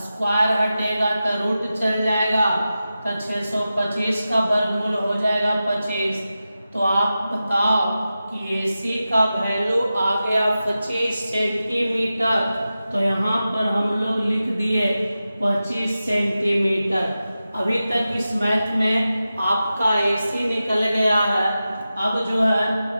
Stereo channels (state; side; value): inverted; both; correlation -0.93